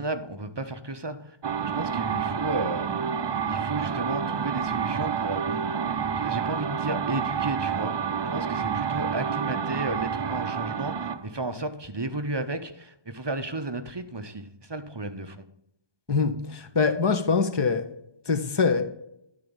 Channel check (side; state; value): left; late; 1.2 ms